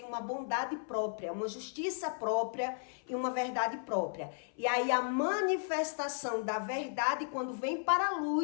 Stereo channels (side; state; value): right; silent; 55 dB below the other